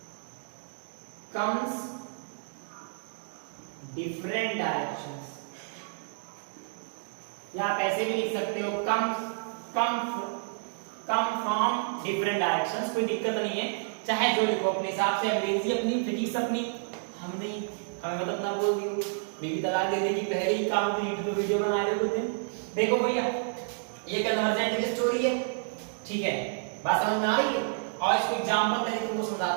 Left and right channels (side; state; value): left; silent; digital silence